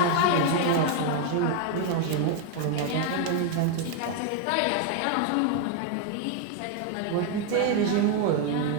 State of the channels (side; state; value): both; different; correlation 0.01